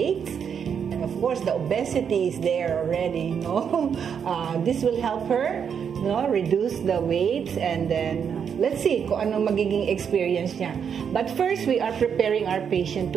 And of course, the obesity is there already, no? This will help her, no, reduce the weight, and then let's see kung ano magiging experience niya. But first, we are preparing our patient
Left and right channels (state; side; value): quieter; left; 7.4 dB